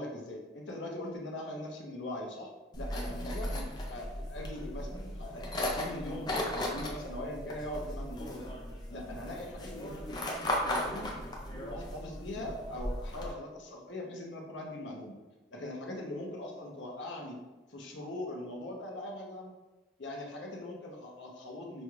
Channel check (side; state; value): both; normal; correlation 0.40